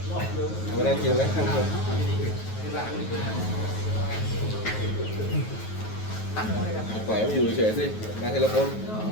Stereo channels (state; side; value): late; right; 9.3 ms